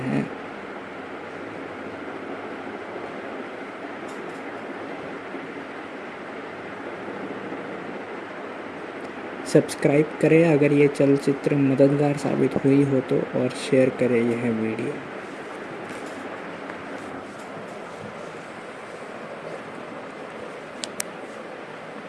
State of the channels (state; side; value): identical; both; correlation 1.00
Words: सब्सक्राइब करें अगर ये चलचित्र मददगार साबित हुई हो तो, और शेयर करें यह वीडियो।